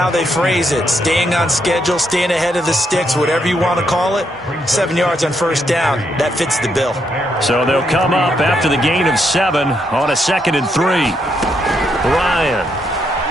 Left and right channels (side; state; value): both; normal; correlation 0.77